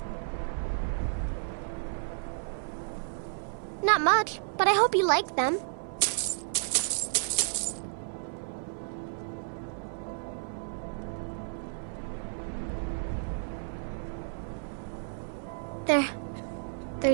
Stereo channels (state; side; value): silent; left; 57 dB below the other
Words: Not much, but I hope you like them. They're